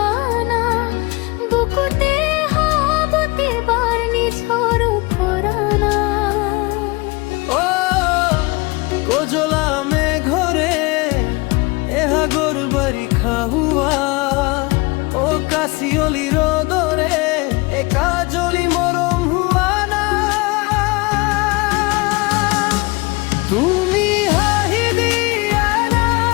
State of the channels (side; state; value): right; quieter; 25.2 dB